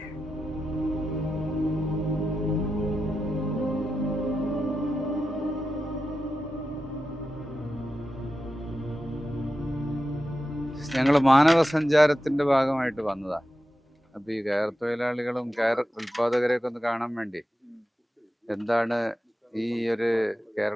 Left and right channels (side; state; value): both; normal; correlation 0.90